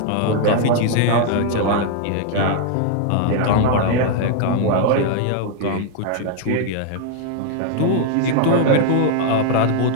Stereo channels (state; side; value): different; both; correlation 0.00